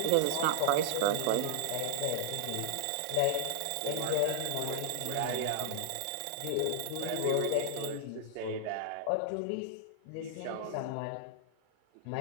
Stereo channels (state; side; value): different; both; correlation -0.01